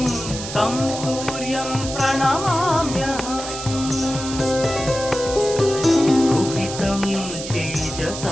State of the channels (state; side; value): noise; right; hiss, 9 dB below the sound